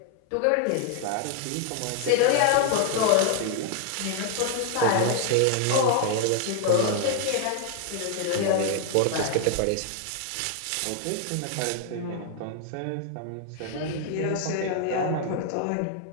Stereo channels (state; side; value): different; both; correlation 0.00